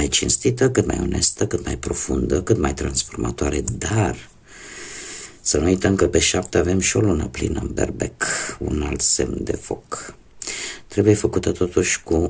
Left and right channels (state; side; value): identical; both; correlation 1.00